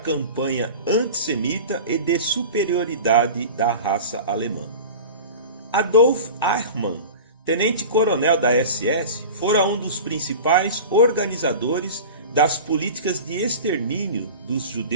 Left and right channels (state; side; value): inverted; both; correlation -0.34